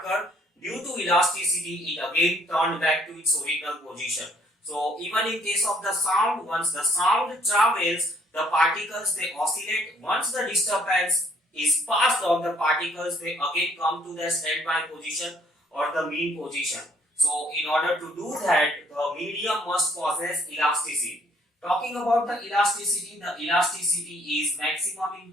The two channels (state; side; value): normal; both; correlation 0.63